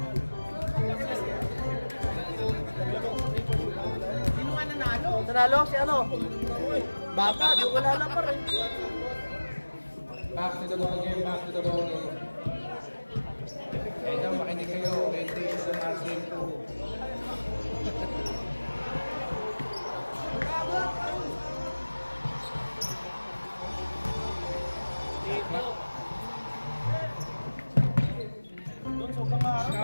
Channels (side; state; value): both; inverted; correlation -1.00